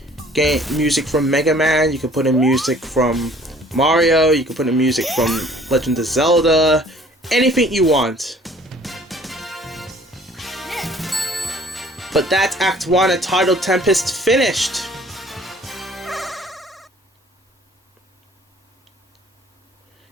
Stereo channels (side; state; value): both; normal; correlation 0.54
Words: game music from Mega Man, you could put in music from Mario, you could put in music from Legend of Zelda, anything you want. But that's Act 1 of Tidal Tempest finished!